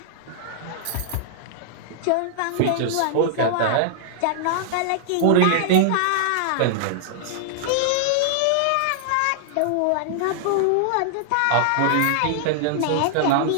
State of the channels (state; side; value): different; both; correlation -0.01